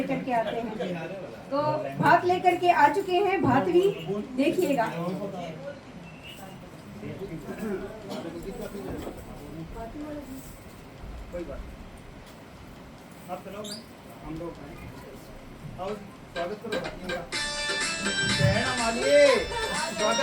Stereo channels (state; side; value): identical; both; correlation 1.00